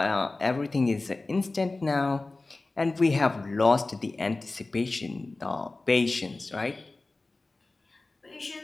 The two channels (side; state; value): right; quieter; 3.3 dB